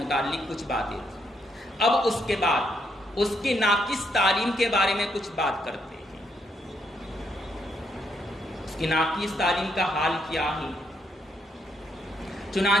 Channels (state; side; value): normal; both; correlation 0.76